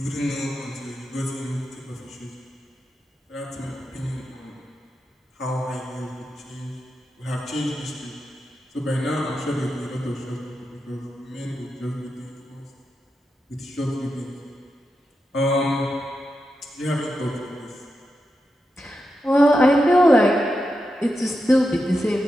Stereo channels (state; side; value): normal; both; correlation 0.88